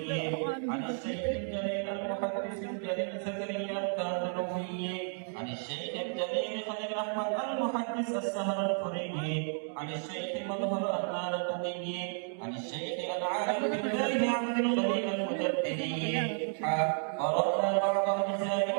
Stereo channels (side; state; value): left; silent; 56 dB below the other